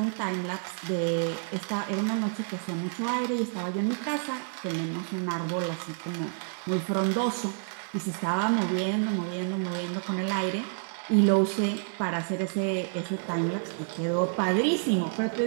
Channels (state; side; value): silent; left; digital silence